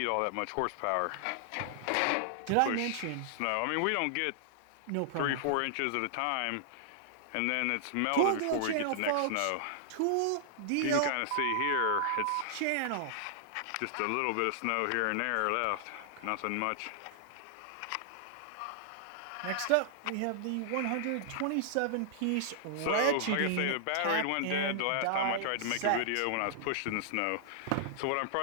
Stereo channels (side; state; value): both; different; correlation -0.01